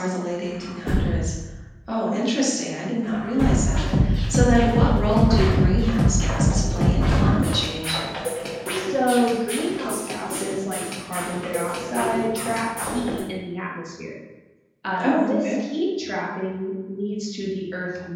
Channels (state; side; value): identical; both; correlation 1.00